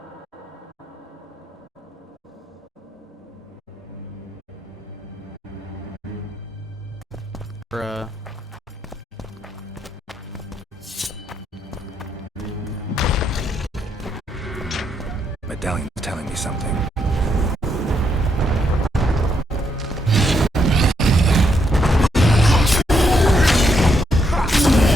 Bruh. Medallion's telling me something.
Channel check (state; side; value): normal; both; correlation 0.77